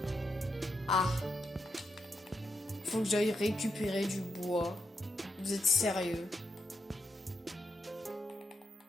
Ah. Faut que j'aille récupérer du bois. Vous êtes sérieux?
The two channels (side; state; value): both; normal; correlation 0.83